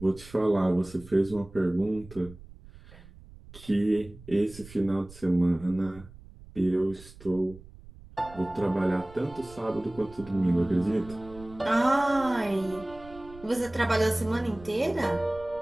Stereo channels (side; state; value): right; noise; rumble, 19 dB below the sound